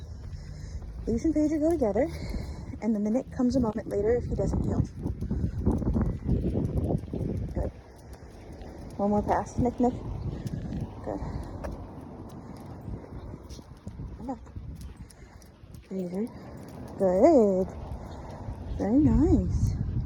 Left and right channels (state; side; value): identical; both; correlation 1.00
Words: Leash and pager go together, and then the Nick comes a moment later if he doesn't yield. Good. One more pass. Nick, Nick. Good. Come back. Pager. Good. Very nice.